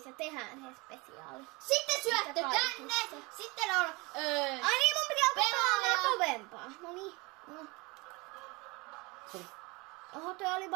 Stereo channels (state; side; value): quieter; left; 25.7 dB